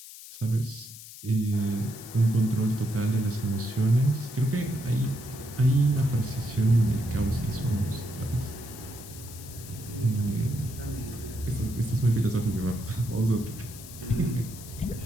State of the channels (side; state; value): left; noise; hiss, 15 dB below the sound